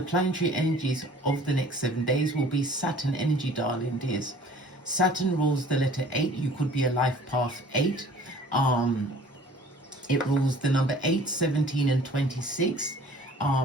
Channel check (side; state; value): both; normal; correlation 0.50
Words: planetary energies of the next 7 days will be Saturn energy, darling dears. Saturn rules the letter 8. You could be a life path 8. It rules the number 8, 17, and 26.